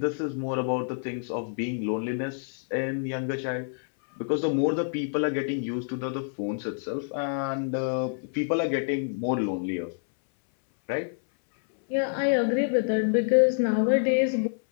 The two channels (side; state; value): right; silent; 60 dB below the other